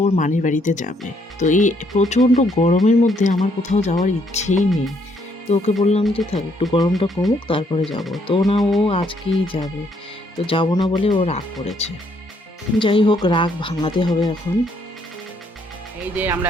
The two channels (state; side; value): normal; both; correlation 0.70